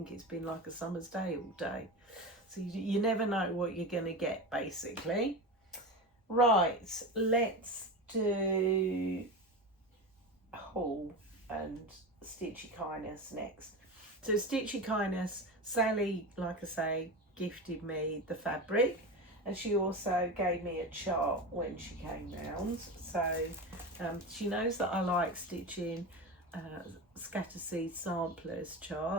it's been like a summer's day all day. So you never know what you're going to get, basically. Right, let's do haul and Stitchy Kindness next. So Stitchy Kindness, Sally, like I say, gifted me the fabric. And she also gave me a chart when she came round. So she knows that I like stitching scatter seed samplers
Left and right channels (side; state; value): both; normal; correlation 0.24